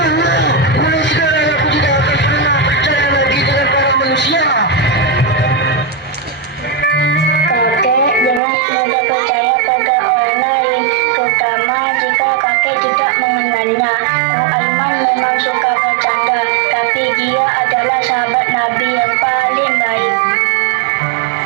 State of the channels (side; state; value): left; drops out; at 8.4 s